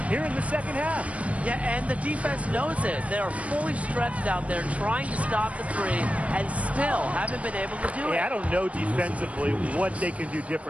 here in the second half. Yeah, and the defense knows it. They are fully stretched out there trying to stop the three and still haven't been able to do it. I don't know defensively what they can do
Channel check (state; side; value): late; left; 0.065 ms